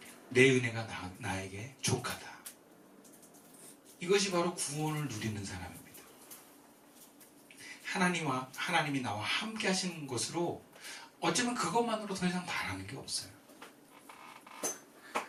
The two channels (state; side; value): identical; both; correlation 1.00